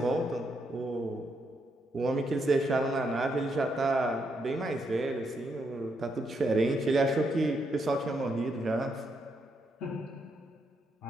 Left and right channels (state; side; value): normal; both; correlation 0.79